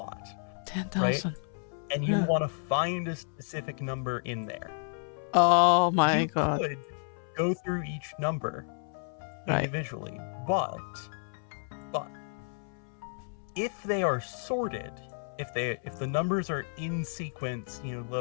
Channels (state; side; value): silent; right; 57 dB below the other